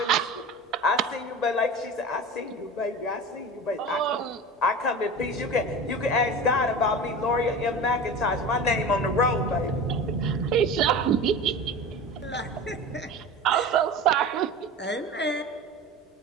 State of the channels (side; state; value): both; normal; correlation 0.32